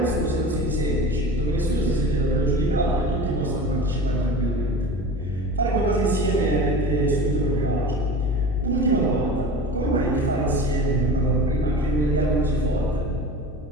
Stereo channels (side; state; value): both; normal; correlation 0.34